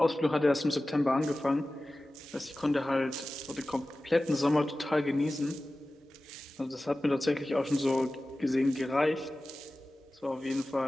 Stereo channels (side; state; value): both; normal; correlation 0.96